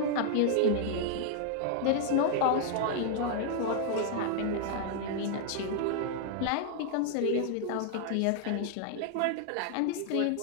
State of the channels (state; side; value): different; both; correlation 0.00